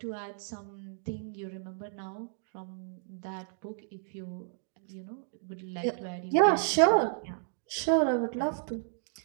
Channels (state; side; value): silent; left; digital silence